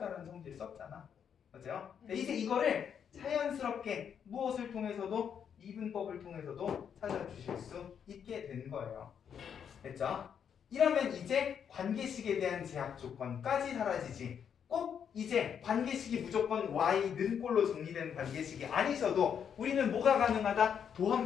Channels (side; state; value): right; quieter; 7.9 dB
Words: 성질 썼잖아. 맞아요? 이제 이거를 자연스럽게 무엇을 통해서도 미분법을 통해서도 찾아주실 수 있게 된 거예요. 됐죠? 이러면 이제 관계식에 대한 제약 조건까지 사라지지. 꼭 이제 관계식이 무조건 y는 꼴로 정리되는 관계식이 아니셔도 우리는 뭐가 가능하다?